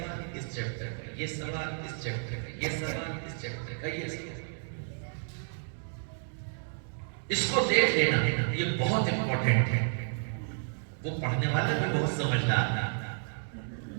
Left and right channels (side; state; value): left; silent; digital silence